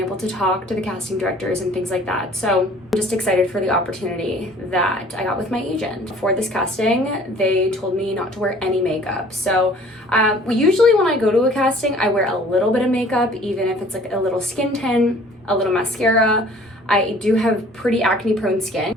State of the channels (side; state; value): both; normal; correlation 0.52